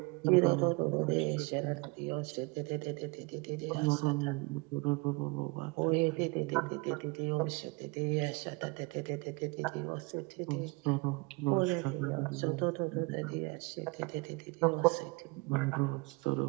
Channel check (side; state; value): left; quieter; 26.6 dB